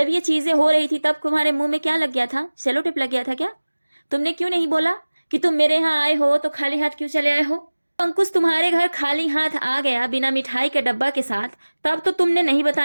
ये चीज़ें हो रही थी तब तुम्हारे मुंह में क्या लग गया था, सेलो टेप लग गया था क्या? तुमने क्यों नहीं बोला कि तुम मेरे यहाँ आए हो तो खाली हाथ क्यों चले आए हो? अंकुश तुम्हारे घर खाली हाथ आ गया बिना मिठाई के डब्बा के साथ, तब तो तुमने नहीं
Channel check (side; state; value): both; inverted; correlation -1.00